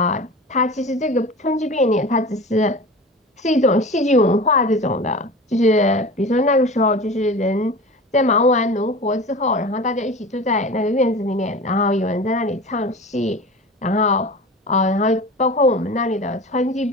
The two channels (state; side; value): normal; both; correlation 0.34